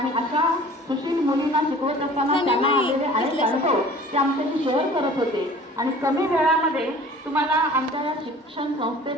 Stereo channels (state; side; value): normal; both; correlation 0.46